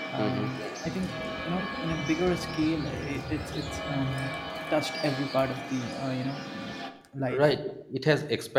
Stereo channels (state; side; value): identical; both; correlation 1.00